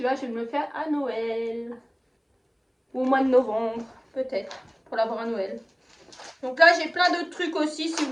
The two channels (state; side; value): identical; both; correlation 1.00